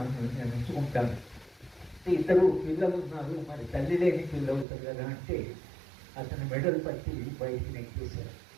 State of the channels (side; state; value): left; drops out; at 4.7 s